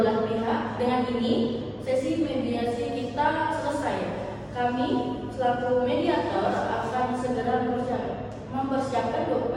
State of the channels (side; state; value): both; identical; correlation 1.00